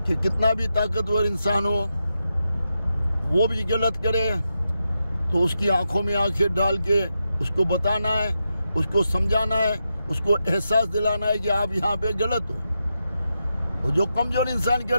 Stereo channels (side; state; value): both; inverted; correlation -0.87